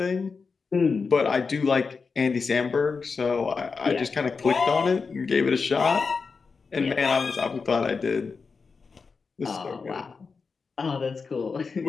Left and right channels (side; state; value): right; quieter; 4.9 dB